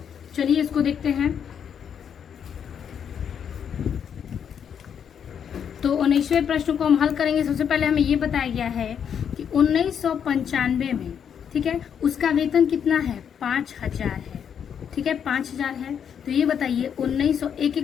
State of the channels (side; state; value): right; quieter; 8.0 dB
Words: चलिए इसको देखते हैं। तो 19वें प्रश्न को हम हल करेंगे। सबसे पहले हमें ये बताया गया है कि 1995 में, ठीक है, उसका वेतन कितना है 5000 है, ठीक है, 5000 है। तो ये बताइए 1900,